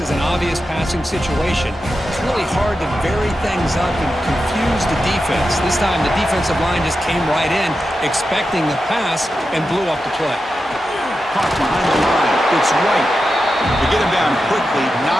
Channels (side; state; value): both; normal; correlation 0.90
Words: an obvious passing situation. It's really hard to vary things up and confuse the defense. This time, the defensive line just came right in, expecting the pass, and blew up the play. Caught behind the line. It's right. To get him down quickly,